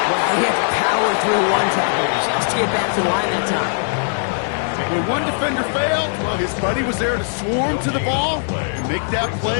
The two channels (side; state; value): right; silent; digital silence